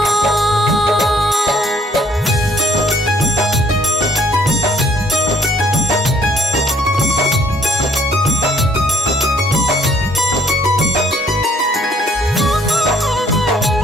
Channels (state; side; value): normal; both; correlation 0.64